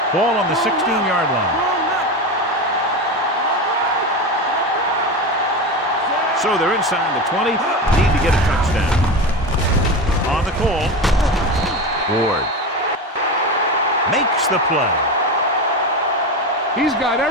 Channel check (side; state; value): both; normal; correlation 0.22